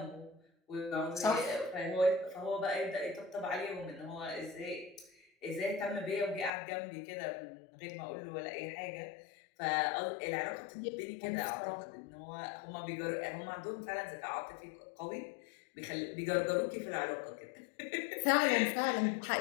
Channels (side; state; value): right; drops out; at 6.5 s